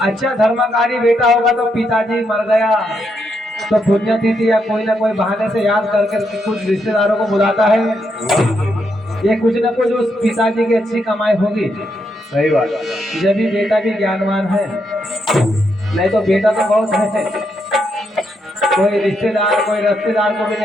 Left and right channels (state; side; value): normal; both; correlation 0.79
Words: अच्छा धर्मकारी बेटा होगा तो पिताजी मर गया तो पुण्यतिथि या कोई ना कोई बहाने से याद करके कुछ रिश्तेदारों को बुलाता है। ये कुछ ना कुछ उस पिताजी की अच्छी कमाई होगी। सही बात। जब भी बेटा भी ज्ञानवान है, नहीं तो बेटा तो बहुत है, कोई रिश्तेदार कोई रिश्तेदार को भी